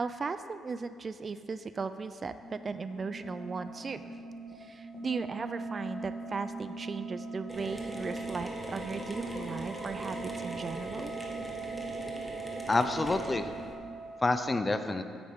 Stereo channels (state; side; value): normal; both; correlation 0.86